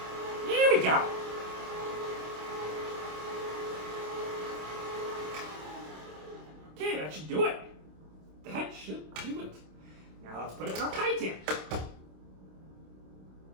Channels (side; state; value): left; late; 26 ms